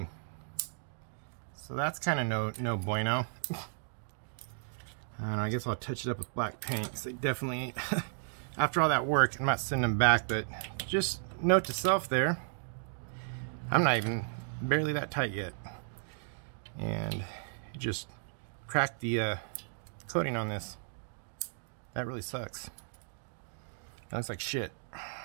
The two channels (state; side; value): silent; left; digital silence